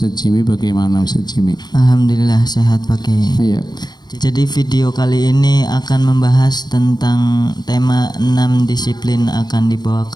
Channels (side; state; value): right; late; 0.20 ms